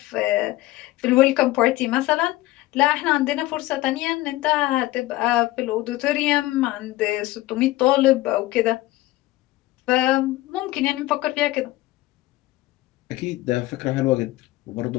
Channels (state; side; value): quieter; right; 17.8 dB